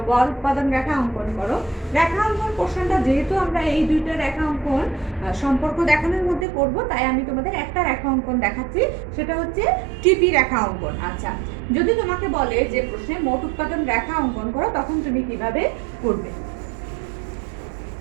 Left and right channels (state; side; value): drops out; left; at 6.5 s